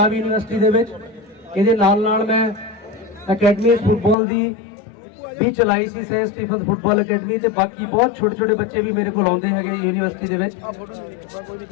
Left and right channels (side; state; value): right; drops out; at 4.2 s